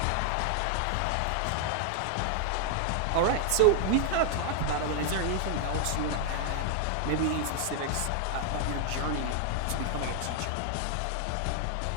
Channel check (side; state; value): both; different; correlation 0.00